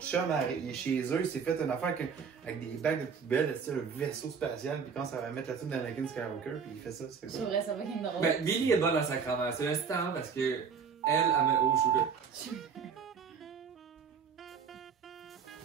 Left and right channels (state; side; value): quieter; left; 6.3 dB